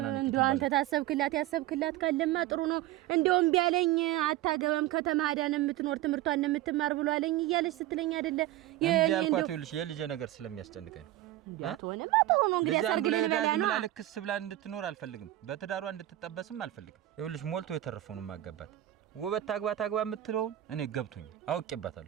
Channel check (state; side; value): quieter; left; 14.8 dB